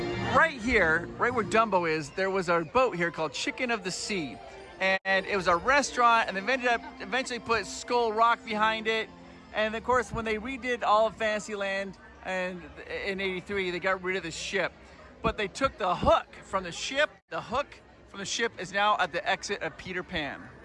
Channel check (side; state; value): both; identical; correlation 1.00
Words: Right here, right where Dumbo is, there was a boat here called Chicken of the Sea. And it was a restaurant, and they ended up eventually put Skull Rock behind it. And of course, when they redid all of Fantasyland and in '83, they got rid of the ship. But they took the hook from the ship. The hook from the ship is now at the exit of Peter Pan.